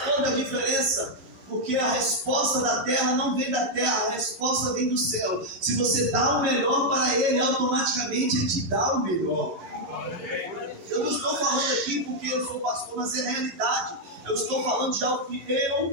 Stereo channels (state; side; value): late; left; 11 ms